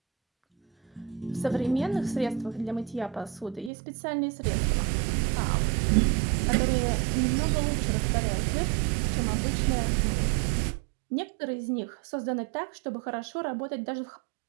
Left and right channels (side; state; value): left; drops out; at 3.7 s